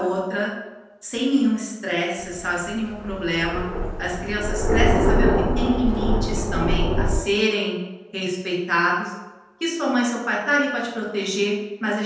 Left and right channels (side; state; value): both; identical; correlation 1.00